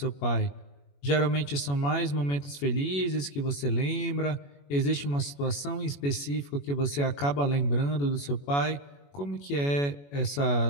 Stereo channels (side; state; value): right; late; 21 ms